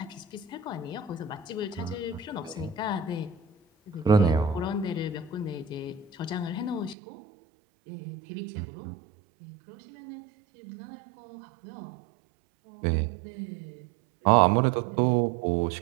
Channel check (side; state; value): left; drops out; at 7.0 s